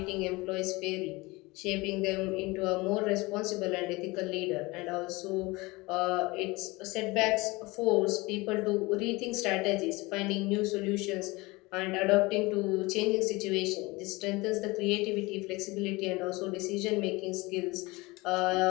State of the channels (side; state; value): right; quieter; 23.0 dB